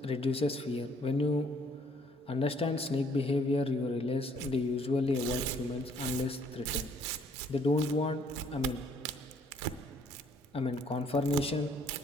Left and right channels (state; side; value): normal; both; correlation 0.64